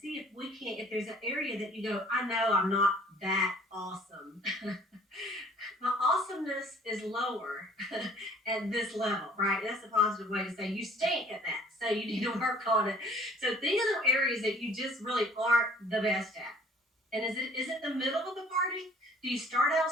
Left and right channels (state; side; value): normal; both; correlation 0.55